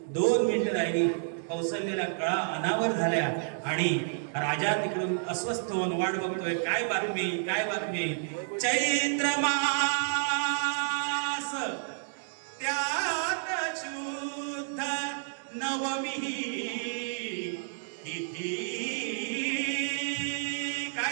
2 मिनिटं राहिली. कौसल्याला कळा अनावर झाल्या आणि राजा तिकडून अस्वस्थ होऊन वाट बघतोय. काय बातमी, काय बातमी. चैत्र मास त्यात शुद्ध नवमी तिथी.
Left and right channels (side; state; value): left; silent; digital silence